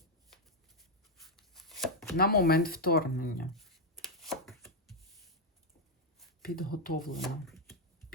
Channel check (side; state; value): both; normal; correlation 0.02